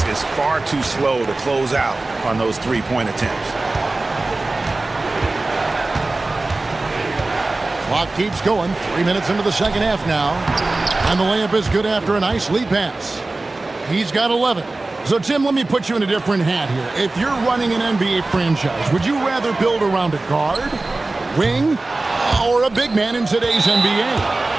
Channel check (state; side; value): quieter; left; 3.1 dB